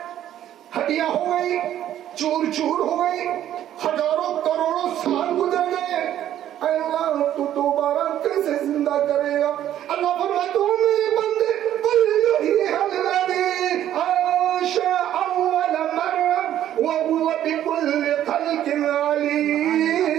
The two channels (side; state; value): left; quieter; 11.6 dB